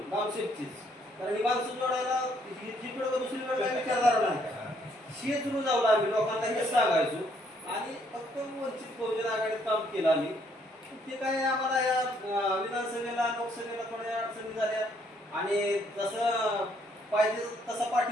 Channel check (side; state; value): both; normal; correlation 0.68